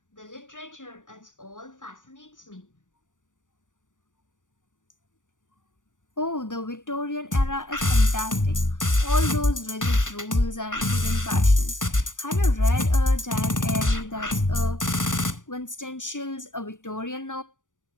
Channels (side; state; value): right; late; 0.87 ms